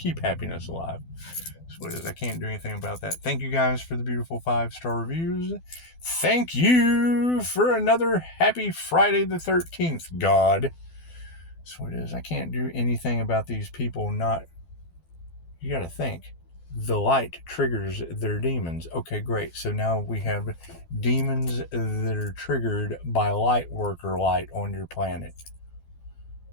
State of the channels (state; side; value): late; right; 12 ms